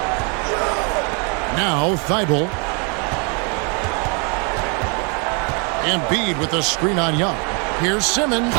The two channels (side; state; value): left; quieter; 35.4 dB